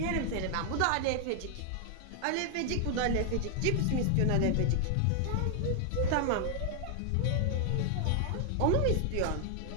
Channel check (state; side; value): different; both; correlation 0.00